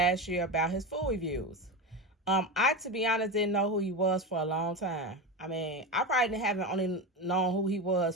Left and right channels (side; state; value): both; normal; correlation 0.19